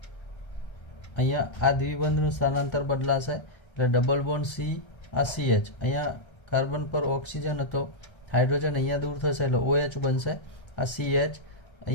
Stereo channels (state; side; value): late; right; 1.3 ms